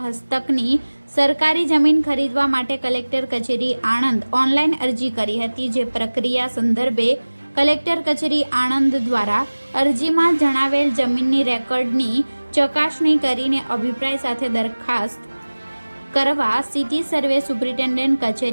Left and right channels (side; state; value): both; inverted; correlation -1.00